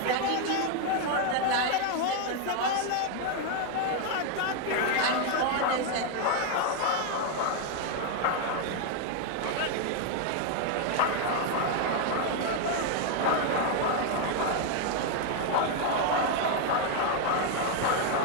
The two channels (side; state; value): both; different; correlation 0.01